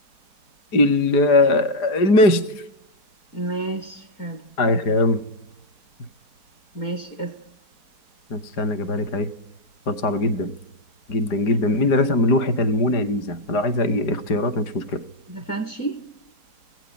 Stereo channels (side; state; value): right; late; 4.9 ms